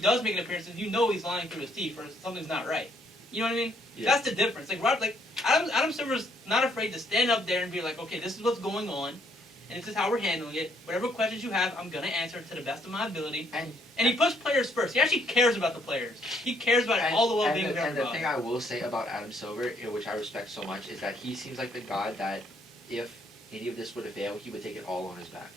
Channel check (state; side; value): normal; both; correlation 0.69